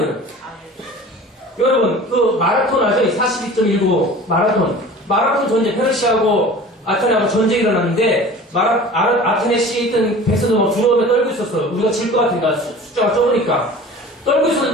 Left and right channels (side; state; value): both; normal; correlation 0.41